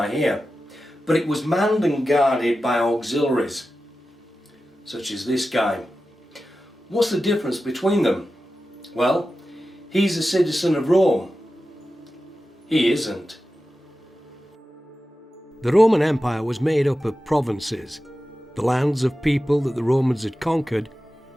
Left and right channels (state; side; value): normal; both; correlation 0.93